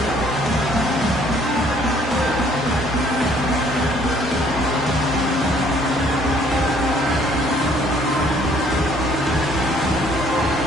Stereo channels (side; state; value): both; normal; correlation 0.61